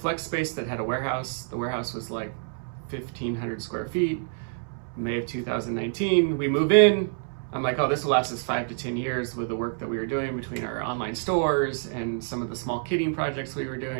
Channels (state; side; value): silent; left; 60 dB below the other